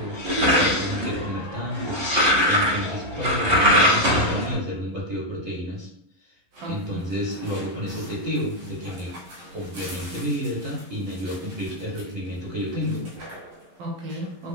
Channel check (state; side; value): late; left; 11 ms